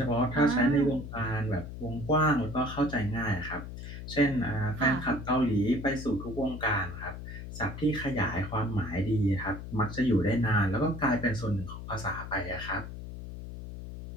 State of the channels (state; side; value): noise; left; hum, 10 dB below the sound